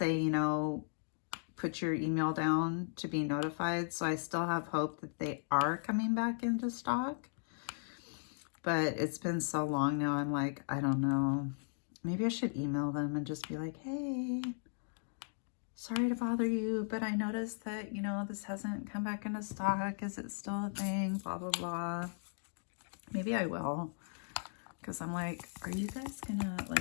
you know, put your email down to be notified. So I still have hope that they are coming back into stock. But it's been so long now, I'm like, I don't know. Maybe I should email them and just be like, hey, sorry to bother you, but I noticed that, you know, this hasn't come back into stock. Is it still a thing? Blah, blah, blah. Maybe I will. Because I'm like, are you guys gonna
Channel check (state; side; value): silent; right; digital silence